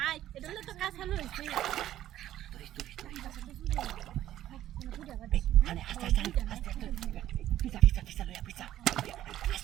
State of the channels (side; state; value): left; quieter; 12.8 dB